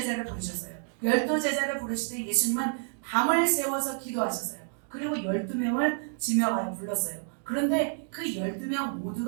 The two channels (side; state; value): left; silent; digital silence